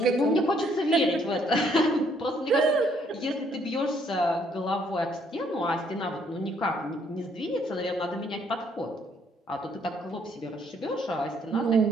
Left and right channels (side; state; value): both; normal; correlation 0.67